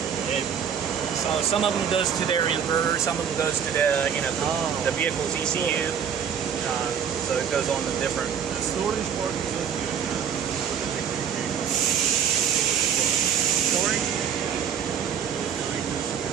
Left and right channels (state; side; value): quieter; left; 7.9 dB